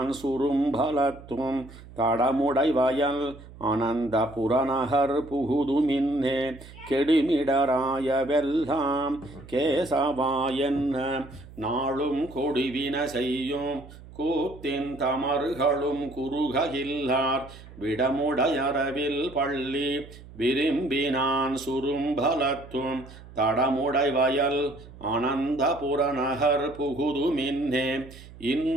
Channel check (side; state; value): right; noise; hum, 18 dB below the sound